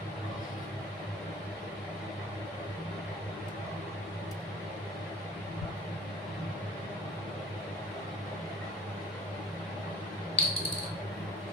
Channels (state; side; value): normal; both; correlation 0.46